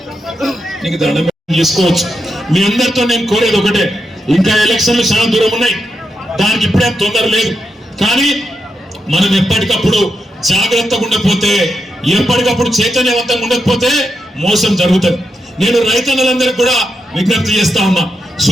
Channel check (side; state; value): both; normal; correlation 0.84